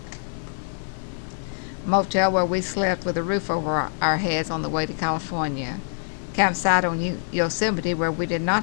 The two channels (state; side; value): silent; right; digital silence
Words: Motel where we slept with a roof over our heads on the way to California. Campsite on Yosemite where we did not